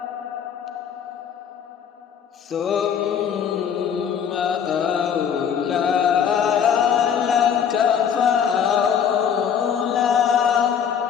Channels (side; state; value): right; quieter; 7.9 dB